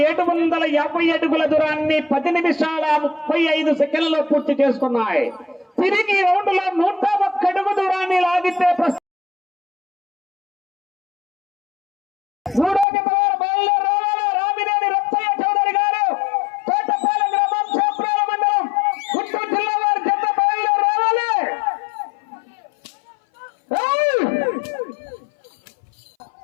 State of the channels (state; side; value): drops out; right; at 12.9 s